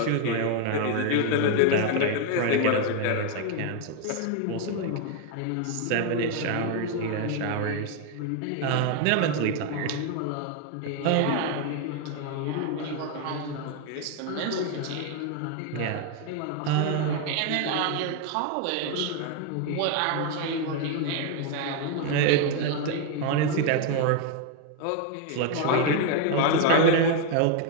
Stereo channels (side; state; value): both; different; correlation 0.01